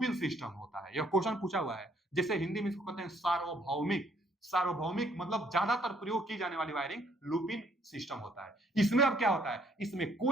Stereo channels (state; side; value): normal; both; correlation 0.66